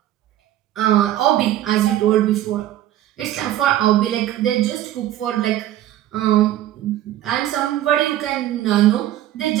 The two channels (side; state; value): left; quieter; 13.1 dB